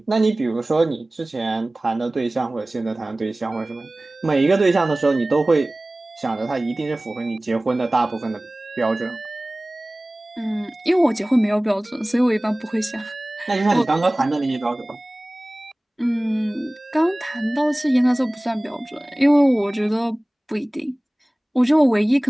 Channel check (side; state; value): both; normal; correlation 0.98